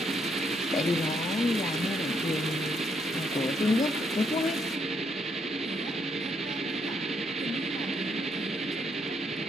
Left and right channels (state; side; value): normal; both; correlation 0.74